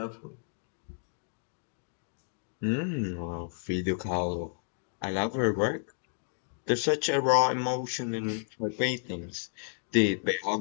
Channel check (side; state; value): right; silent; digital silence